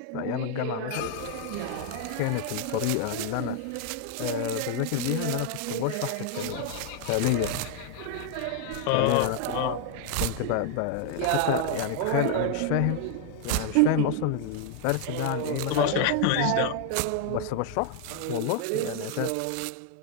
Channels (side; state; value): both; different; correlation 0.00